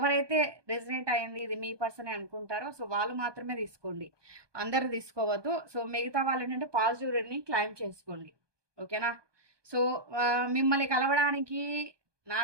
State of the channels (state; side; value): late; left; 1.2 ms